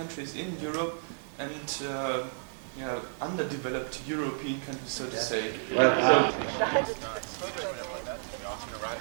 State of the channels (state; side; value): silent; left; 56 dB below the other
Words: in Europe, and underdeveloped European countries, so to say?